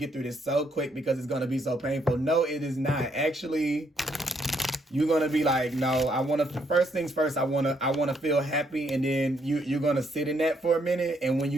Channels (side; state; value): both; normal; correlation 0.72